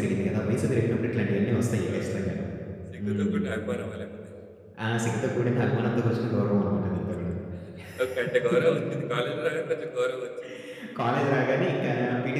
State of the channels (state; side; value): identical; both; correlation 1.00